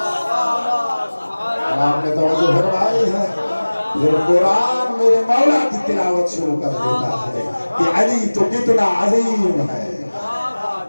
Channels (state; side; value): inverted; both; correlation -1.00